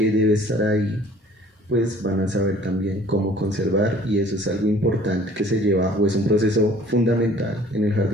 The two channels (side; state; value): both; normal; correlation 0.52